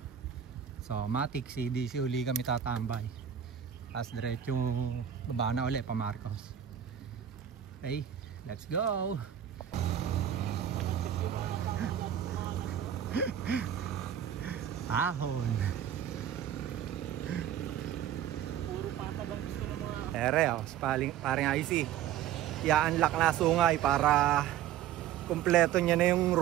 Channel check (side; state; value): left; quieter; 10.0 dB